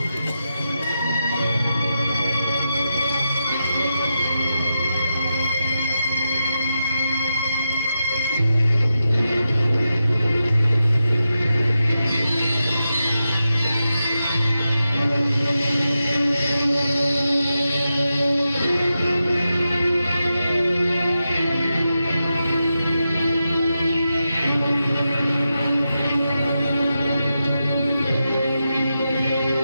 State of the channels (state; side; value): inverted; both; correlation -0.89